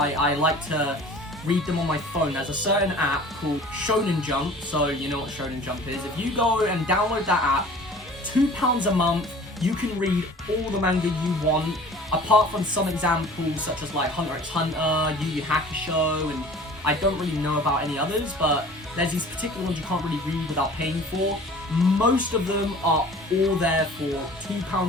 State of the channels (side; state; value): both; normal; correlation 0.45